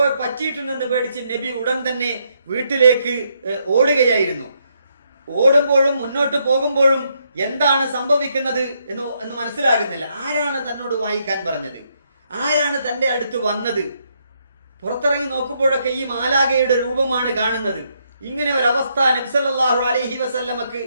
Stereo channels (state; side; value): inverted; both; correlation -0.75